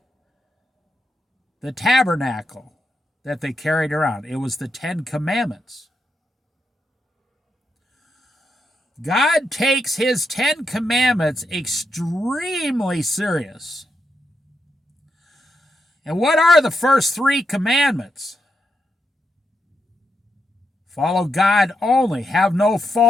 the tabernacle that they carried around? It was the Ten Commandments. God takes his Ten Commandments extremely serious. And what are the first three commandments? Follow God only. Have no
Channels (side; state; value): both; normal; correlation 0.83